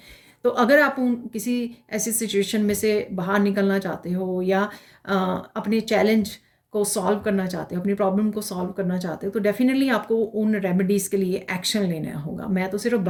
तो अगर आप किसी ऐसी सिचुएशन में से बाहर निकलना चाहते हो या अपने चैलेंज को सॉल्व करना चाहते हो, अपनी प्रॉब्लम को सॉल्व करना चाहते हो, तो डेफिनेटली आपको उन रेमेडीज़ के लिए एक्शन लेना होगा। मैं तो सिर्फ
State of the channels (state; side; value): identical; both; correlation 1.00